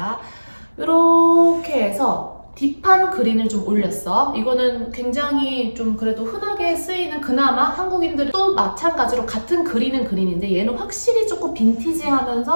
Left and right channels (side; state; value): both; inverted; correlation -1.00